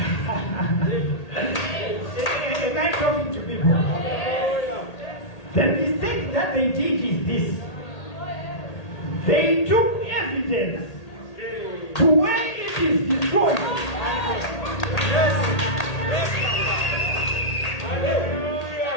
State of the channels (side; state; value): right; late; 1.8 ms